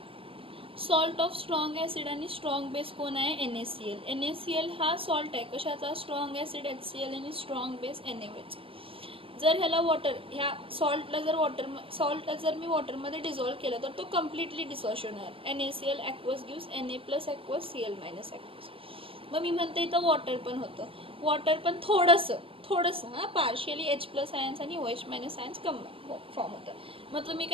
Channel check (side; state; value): left; late; 0.26 ms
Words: सॉल्ट ऑफ स्ट्रॉंग ॲसिड आणि स्ट्रॉंग बेस कोण आहे, NaCl. NaCl हा सॉल्ट आहे कशाचा, स्ट्रॉंग ॲसिड HCl आणि स्ट्रॉंग बेस NaOH. जर ह्याला ह्या सॉल्टला जर मी वॉटरमध्ये डिझॉल्व केलं तर तो कम्प्लिटली डिसॉल्व्ह होणार. NaCl aqueous gives Na plus aqueous Cl minus aqueous. मग मी म्हणते इथं वॉटर पण होतं, वॉटर पण थोडंसं पार्शियली H प्लस आयन्स आणि OH मायनस आयन्स फॉर्म होतं. मग तुम्ही